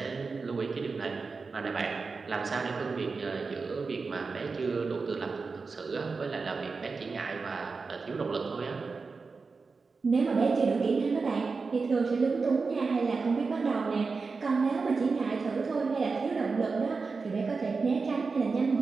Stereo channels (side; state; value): left; quieter; 4.5 dB